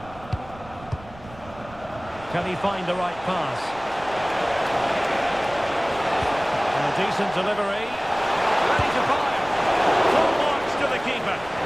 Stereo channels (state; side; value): noise; right; rumble, 19 dB below the sound